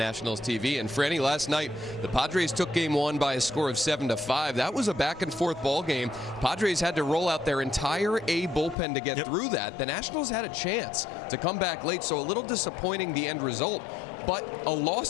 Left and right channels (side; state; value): right; drops out; at 8.8 s